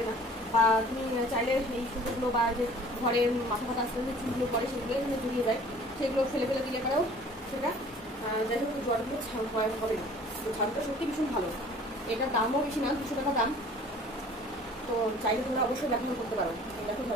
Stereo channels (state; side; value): normal; both; correlation 0.50